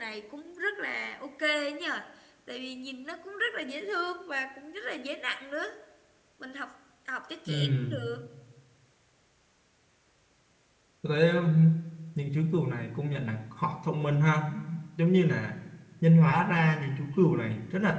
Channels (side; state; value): both; identical; correlation 1.00